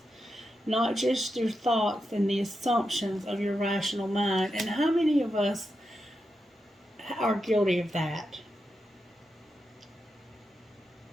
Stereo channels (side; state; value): both; normal; correlation 0.87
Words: not just your thoughts and the assumptions of your rational mind. And how many of us are guilty of that?